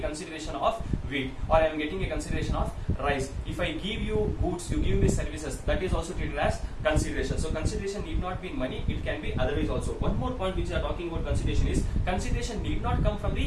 of wheat or I am getting a consideration of rice. If I give you goods, you give me services, that is also treated as consideration. So consideration need not be in money, it can be otherwise also. One more point which we are talking about consideration is consideration need not come from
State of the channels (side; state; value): both; identical; correlation 1.00